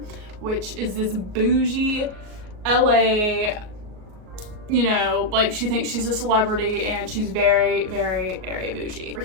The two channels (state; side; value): late; left; 38 ms